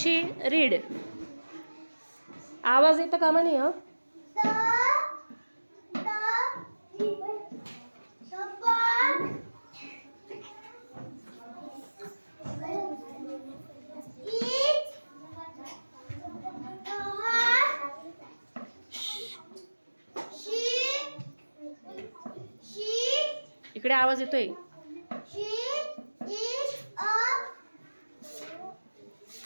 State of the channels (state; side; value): inverted; both; correlation -1.00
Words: रीड. आवाज येता कामा नाही. इकडे आवाज येतोय.